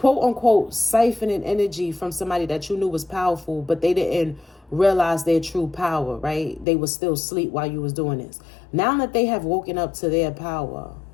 unquote, siphoning energy from somebody that you knew was powerful, but they didn't realize their true power, right? They was still asleep while you was doing this. Now that they have woken up to their power,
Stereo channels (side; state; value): right; drops out; at 6.7 s